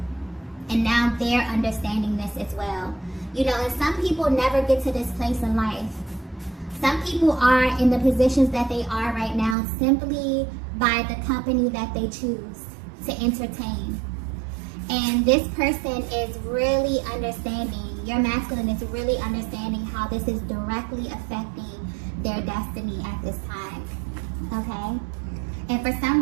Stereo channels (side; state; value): left; drops out; at 9.6 s